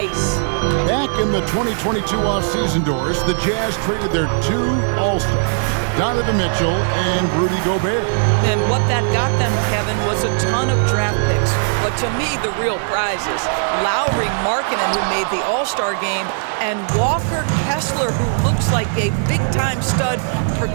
Back in the 2022 off-season doors, the Jazz traded their 2 All-Stars, Donovan Mitchell and Rudy Gobert. And what that got them, Kevin, was a ton of draft picks. But to me, the real prize is Lauri Markkanen, who made the All-Star game, and Walker Kessler, who looks like a big-time stud,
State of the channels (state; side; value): silent; left; 59 dB below the other